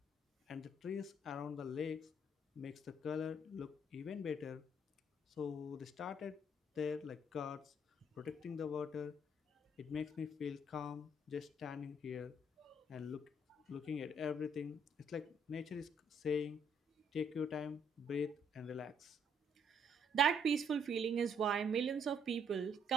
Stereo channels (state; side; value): normal; both; correlation 0.67